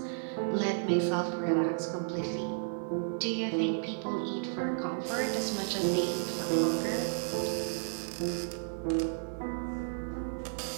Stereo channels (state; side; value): silent; left; 56 dB below the other